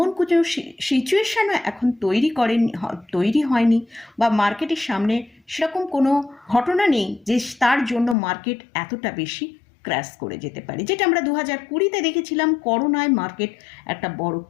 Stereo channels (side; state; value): right; drops out; at 8.2 s